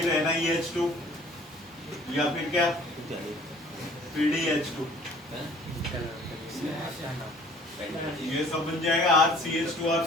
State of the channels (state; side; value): normal; both; correlation 0.53